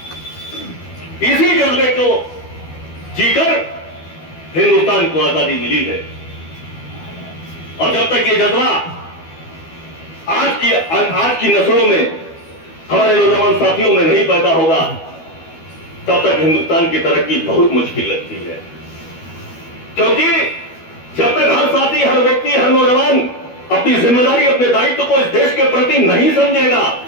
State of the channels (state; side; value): late; right; 12 ms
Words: इसी जज्बे को जीकर हिंदुस्तान को आजादी मिली है। और जब तक ये जज्बा आज की नस्लों में, हमारे नौजवान साथियों में नहीं पैदा होगा, तब तक हिंदुस्तान की तरक्की बहुत मुश्किल लगती है। क्योंकि जब तक हर साथी, हर व्यक्ति, हर नौजवान अपनी जिम्मेदारी, अपने दायित्व को इस देश के प्रति नहीं समझेगा,